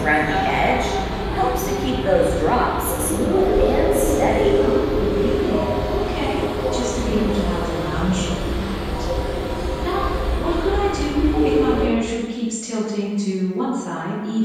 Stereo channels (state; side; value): identical; both; correlation 1.00